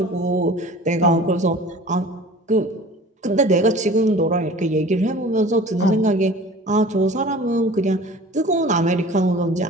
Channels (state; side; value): normal; both; correlation 0.43